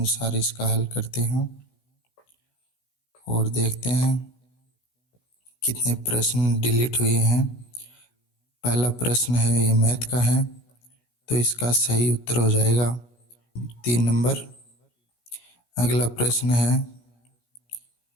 इसका हल करते हैं और देखते हैं कितने प्रश्न डिलीट हुए हैं। पहला प्रश्न है, ये मैथ का है, तो इसका सही उत्तर हो जाएगा 3 नंबर। अगला प्रश्न है,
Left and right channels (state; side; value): late; right; 17 ms